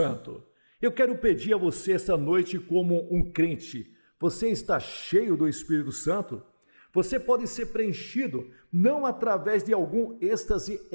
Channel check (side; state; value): both; inverted; correlation -1.00